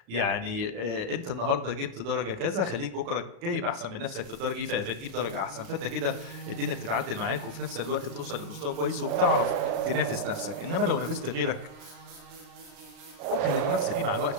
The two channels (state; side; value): late; left; 35 ms